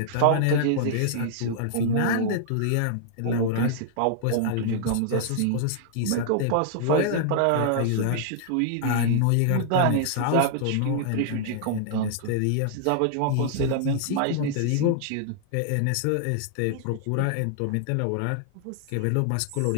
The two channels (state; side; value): different; both; correlation -0.01